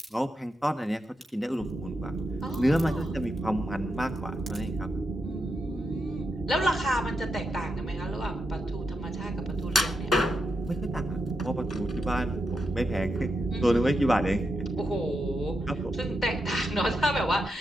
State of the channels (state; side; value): normal; both; correlation 0.85